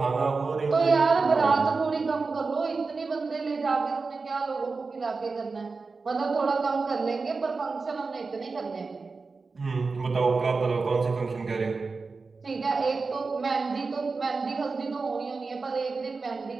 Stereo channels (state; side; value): quieter; left; 4.3 dB